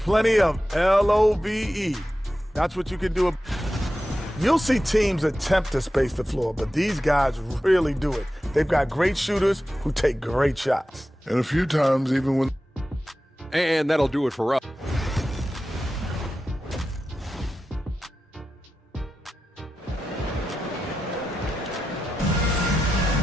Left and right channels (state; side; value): normal; both; correlation 0.92